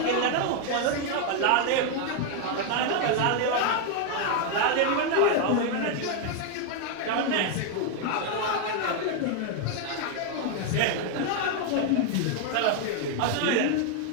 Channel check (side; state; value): both; different; correlation 0.00